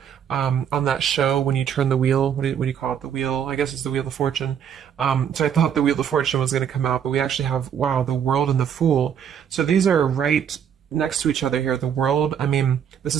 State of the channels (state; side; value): quieter; left; 8.4 dB